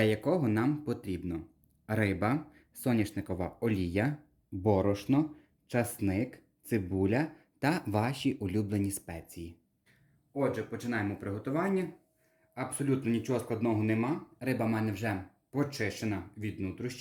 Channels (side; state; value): both; identical; correlation 1.00